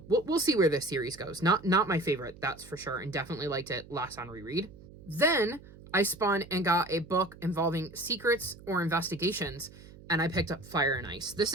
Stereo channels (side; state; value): right; noise; hum, 19 dB below the sound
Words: we'll see where this series goes. Not my favorite, that's for sure, and definitely liked it less on reread. Then I spun and got a book involving secrets or investigations, and I picked up Fire and Ice. This